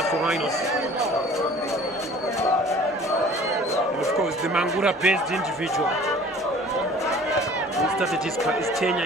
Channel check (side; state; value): both; normal; correlation 0.48